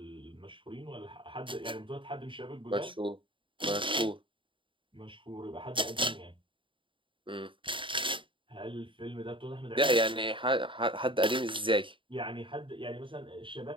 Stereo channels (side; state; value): left; late; 0.25 ms